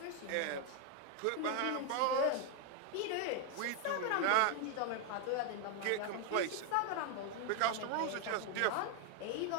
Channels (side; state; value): both; different; correlation 0.01